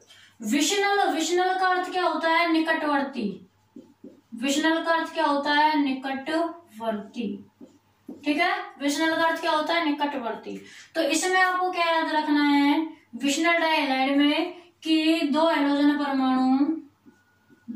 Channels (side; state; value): both; identical; correlation 1.00